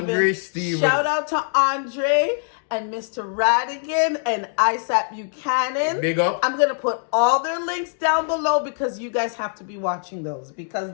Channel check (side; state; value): right; silent; digital silence